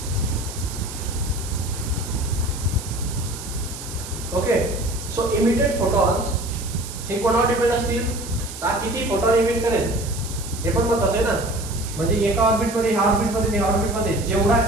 Okay. So emitted photons हे कोणावर डिपेंड असतील, तर किती फोटॉन इमिट करेल हे पण महत्त्वाचं आहे ना. म्हणजे एका ऑर्बिट मध्ये ह्या ऑर्बिट मध्ये ह्या ऑर्बिट मध्ये जेवढा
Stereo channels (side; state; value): right; noise; hiss, 12 dB below the sound